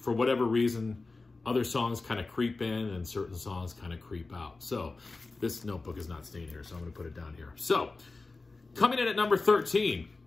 whatever reason, other songs kind of creep in and certain songs kind of creep out. So this notebook is not staying here, so I'm going to put it down here. So coming in at number 13,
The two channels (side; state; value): right; quieter; 3.6 dB